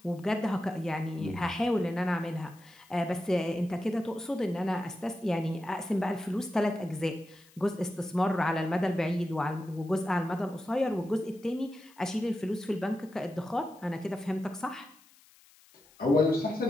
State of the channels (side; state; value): left; noise; hiss, 27 dB below the sound